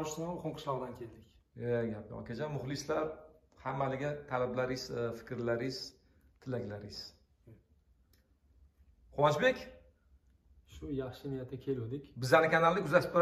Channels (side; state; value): both; identical; correlation 1.00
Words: qishloqdan keldik. Gap yo'q akajon, muxlislar hammaliga talablaringiz, fikrlaringiz, tilaklaringiz. Quvonchbek, shu yaxshi niyatda keldik. Bizning kanalni kuzatib